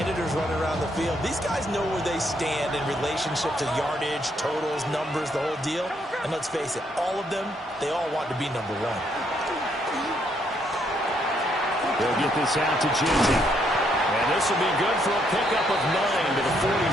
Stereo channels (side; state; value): both; normal; correlation 0.73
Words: running around the field. These guys know where they stand in relationship to yardage, totals, numbers, the whole deal. And let's face it, all of them, they all want to be number 1. They'll get this out to Jinty. And this will be good for a pickup of 9 to the